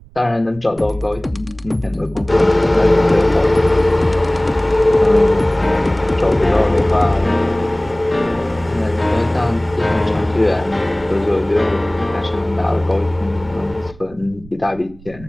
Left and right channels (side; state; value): right; noise; rumble, 21 dB below the sound